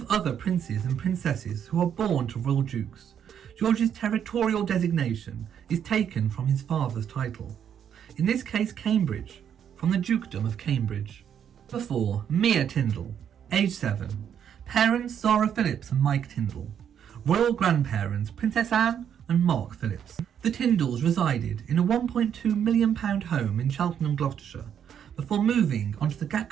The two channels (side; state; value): left; quieter; 8.7 dB